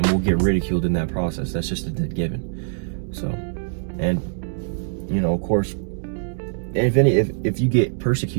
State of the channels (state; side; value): silent; left; digital silence